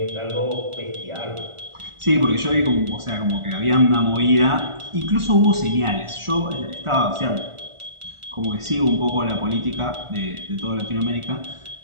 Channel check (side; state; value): left; late; 1.4 ms